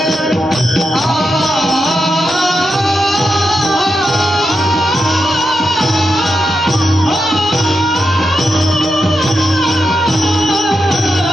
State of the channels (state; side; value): normal; both; correlation 0.86